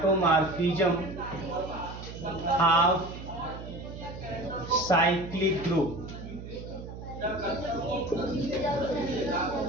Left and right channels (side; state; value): right; noise; hum, 11 dB below the sound